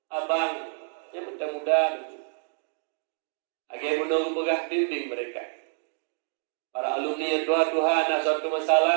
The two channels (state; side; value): silent; left; digital silence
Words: abang yang muda-muda. Agar menunggu pegah bimbing mereka. Para alumni yang doa-doa nak suatu